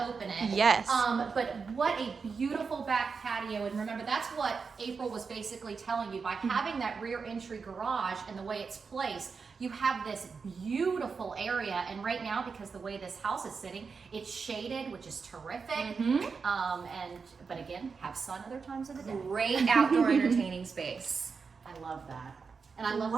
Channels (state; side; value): quieter; left; 5.2 dB